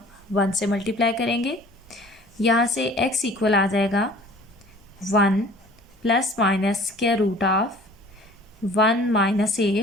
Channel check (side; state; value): both; normal; correlation 0.49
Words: 1 से मल्टीप्लाई करेंगे। यहाँ से x इक्वल आ जाएगा 1 plus minus square root of 1 minus